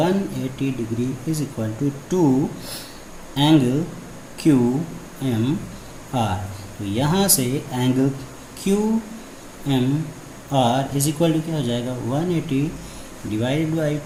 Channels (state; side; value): identical; both; correlation 1.00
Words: degree is equal to 2 angle Q M R. तो यहाँ से angle Q M R is equal to क्या हो जाएगा, 180 divided by